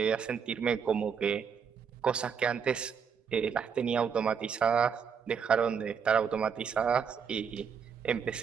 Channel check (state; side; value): quieter; left; 6.7 dB